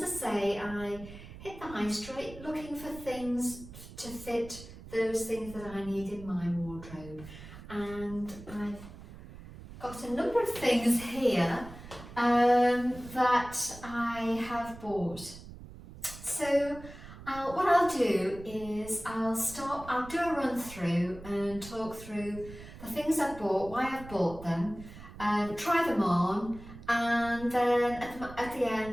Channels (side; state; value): right; noise; rumble, 15 dB below the sound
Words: I say, I hit the high street looking for things to fit those things that I need in my wardrobe, and I've got a number of things here that I have bought. So what I'll do is I'll do a run through and talk through the things I've bought, why I've bought them, try them on, and then at the